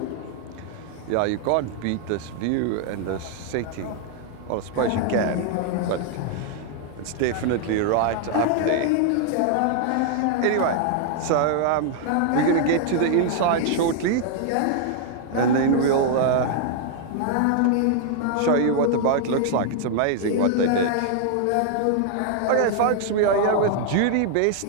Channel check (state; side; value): different; both; correlation 0.00